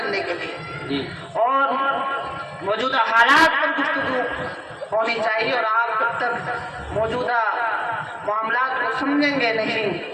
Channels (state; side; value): identical; both; correlation 1.00